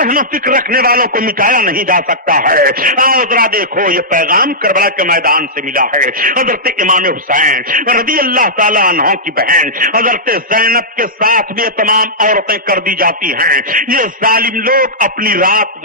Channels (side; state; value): both; normal; correlation -0.12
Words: و فکر رکھنے والوں کو مٹایا نہیں جا سکتا ہے. آؤ ذرا دیکھو, یہ پیغام کربلا کے میدان سے ملا ہے. حضرت امام حسین رضی اللہ تعالیٰ عنہ کی بہن حضرت زینب کے ساتھ بھی تمام عورتیں کر دی جاتی ہیں. یہ ظالم لوگ اپنی رات